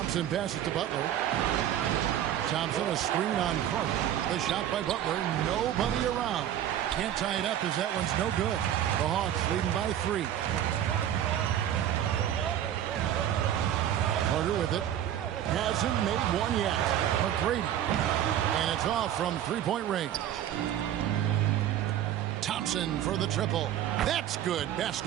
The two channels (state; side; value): quieter; left; 11.0 dB